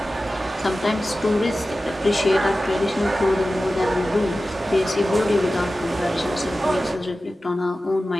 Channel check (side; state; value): both; normal; correlation 0.95